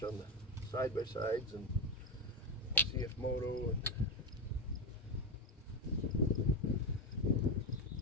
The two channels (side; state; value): both; normal; correlation 0.12